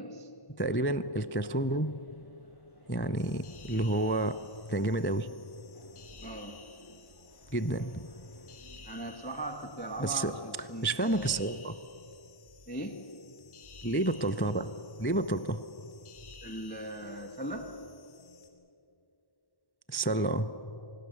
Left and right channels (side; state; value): right; late; 1.1 ms